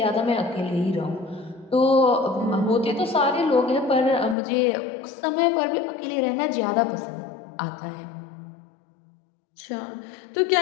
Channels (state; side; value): drops out; right; at 4.4 s